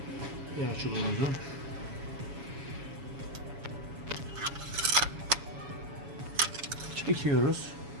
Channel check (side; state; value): left; late; 7.2 ms